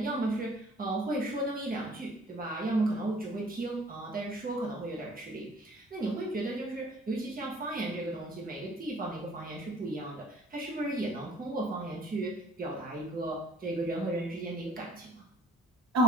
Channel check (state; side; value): normal; both; correlation 0.57